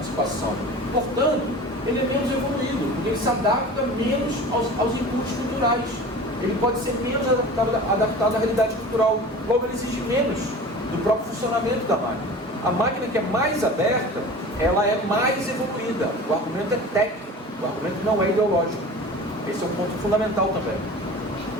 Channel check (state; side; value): normal; both; correlation 0.38